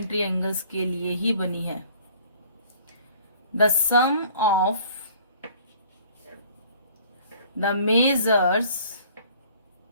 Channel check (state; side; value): inverted; both; correlation -0.53